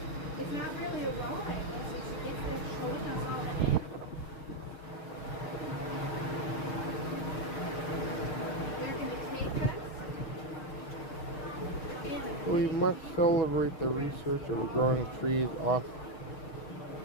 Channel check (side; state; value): right; late; 6.4 ms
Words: it's not really a ride. It's just showing us all the animals. They're going to take us. We must celebrate the research of growing trees off.